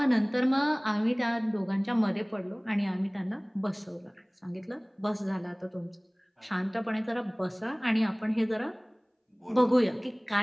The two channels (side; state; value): both; identical; correlation 1.00